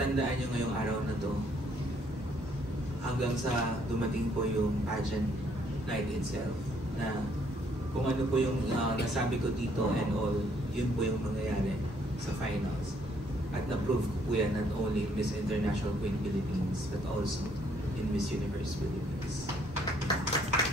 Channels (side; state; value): both; normal; correlation 0.66